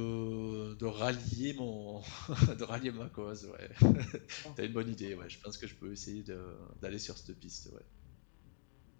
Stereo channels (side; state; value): right; silent; digital silence